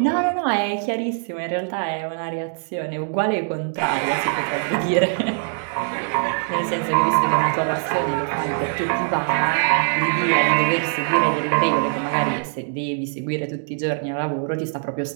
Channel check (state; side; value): silent; left; digital silence